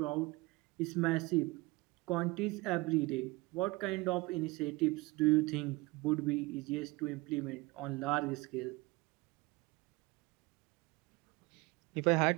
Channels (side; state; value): left; quieter; 22.6 dB